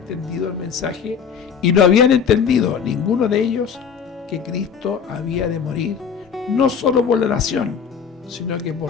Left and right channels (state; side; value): quieter; right; 6.9 dB